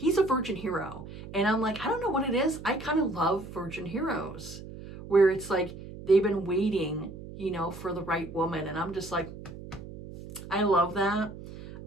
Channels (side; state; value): right; noise; hum, 13 dB below the sound